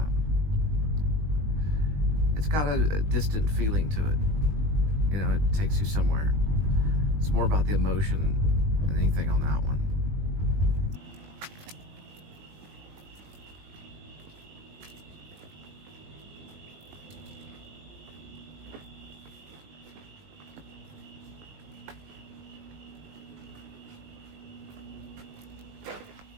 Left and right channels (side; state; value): left; late; 20 ms